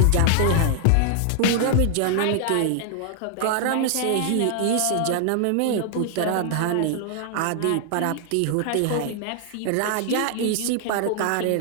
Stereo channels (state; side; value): different; both; correlation 0.00